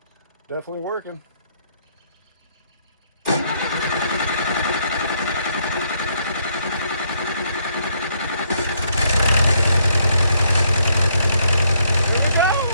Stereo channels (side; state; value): both; inverted; correlation -0.71